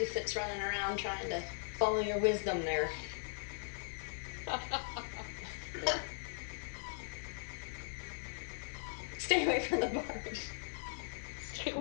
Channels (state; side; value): silent; right; digital silence